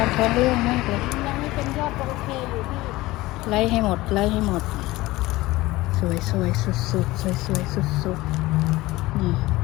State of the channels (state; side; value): quieter; right; 19.0 dB